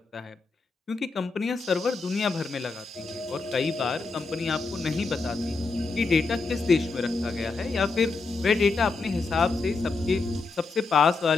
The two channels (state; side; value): quieter; right; 4.0 dB